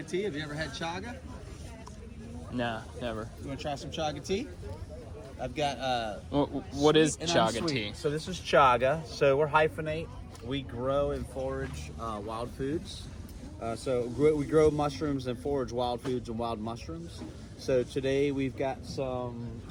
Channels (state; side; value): identical; both; correlation 1.00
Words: tea? Have you ever had chaga? Nah, never. You want to try some chaga tea? I've got what is chaga tea? So this is chaga. So we're hyphenate. We grow and forage wild foods. We grow mushrooms and forage wild foods and wild mushrooms. So today we've got